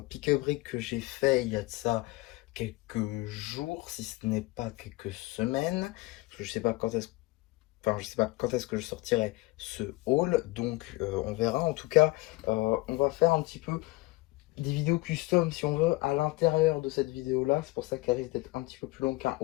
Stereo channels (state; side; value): quieter; right; 21.2 dB